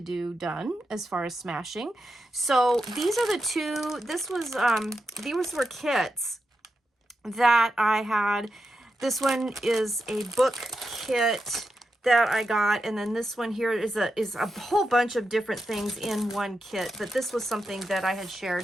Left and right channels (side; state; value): both; normal; correlation 0.88